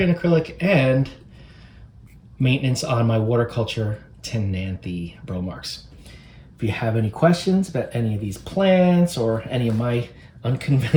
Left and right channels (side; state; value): both; identical; correlation 1.00